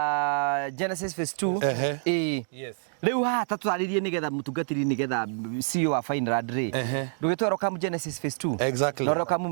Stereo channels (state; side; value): silent; left; digital silence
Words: Genesis phase 2 rĩu haha ta twarĩrie nĩgetha mũtungatĩri nĩgetha CEO wa Finland rĩ ndũgĩtwara kamu Genesis phase 2 na ũroka